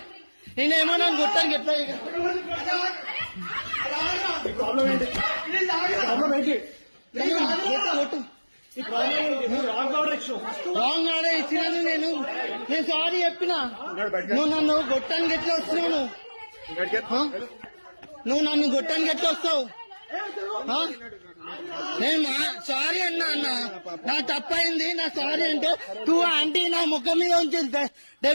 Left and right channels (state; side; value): inverted; both; correlation -1.00